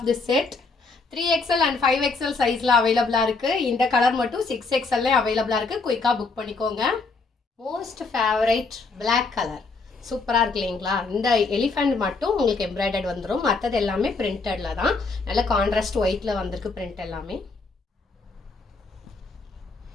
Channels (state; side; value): quieter; right; 4.0 dB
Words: this set. 3XL and 5XL சைஸ்ல அவைலபிளா இருக்கு. இந்த கலர் மட்டும் 6XL அவைலபிளா இருக்கு. குயிக்கா புக் பண்ணிக்கோங்க. மோஸ்ட் ஃபேவரைட் பிளாக் கலர் சூப்பராக இருக்கு இல்லைங்களா? இந்த எலிஃபண்ட் மட்டும் உங்களுக்கு எம்ப்ராய்டர்ட் வந்துடும். மற்றது எல்லாமே பிரிண்டடில் தான். நல்ல கான்ட்ராஸ்ட் ஒயிட்டில் வந்திருக்கு பிரிண்ட் எல்லாமே.